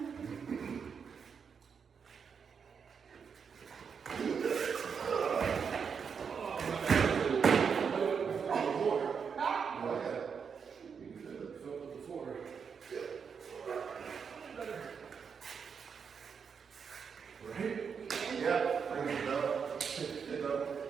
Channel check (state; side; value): quieter; left; 6.4 dB